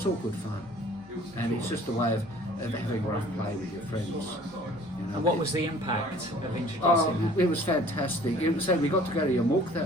all good fun. And it's just a way of having rough play with your friends. And what was the impact of introducing that? It was fantastic. We got to go to Yarmouk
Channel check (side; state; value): both; normal; correlation 0.51